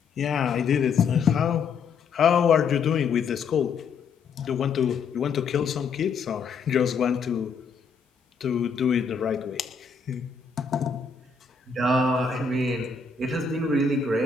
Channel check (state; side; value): quieter; right; 5.4 dB